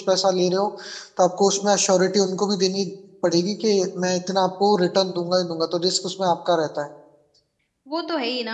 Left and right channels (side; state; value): both; identical; correlation 1.00